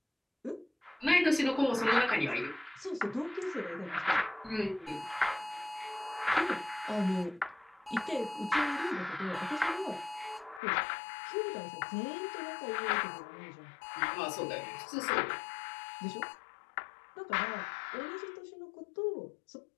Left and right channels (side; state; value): right; drops out; at 10.6 s